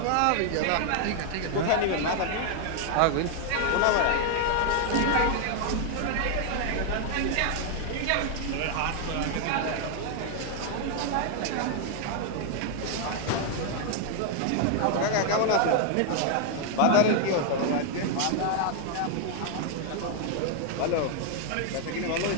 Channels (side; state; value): both; different; correlation 0.00